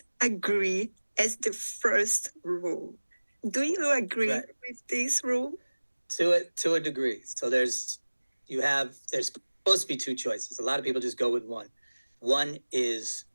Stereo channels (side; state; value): both; inverted; correlation -1.00